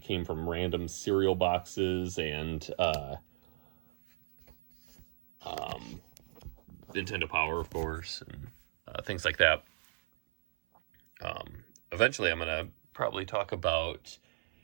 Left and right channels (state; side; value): silent; left; 55 dB below the other